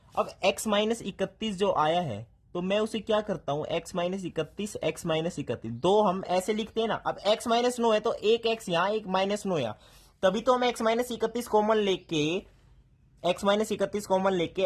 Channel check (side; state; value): both; identical; correlation 1.00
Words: अब x माइनस 31 जो आया है तो मैं उसे क्या करता हूं? x माइनस 31 x माइनस 31 दो हम ऐसे लिखते हैं ना। अब x माइनस 9 है तो एक x यहां एक माइनस 9 यहां, तभी तो हम x माइनस 31 कॉमन लेके x माइनस 31 कॉमन